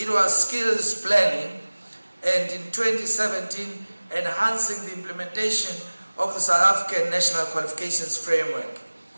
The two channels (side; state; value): both; inverted; correlation -1.00